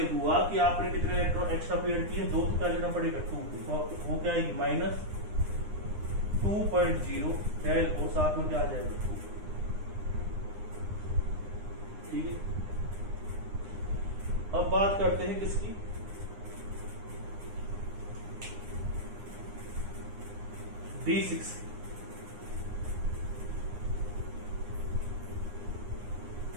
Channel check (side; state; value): left; late; 9.8 ms